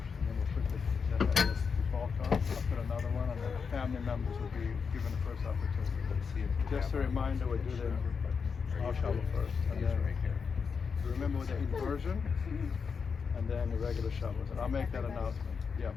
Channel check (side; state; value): right; quieter; 5.8 dB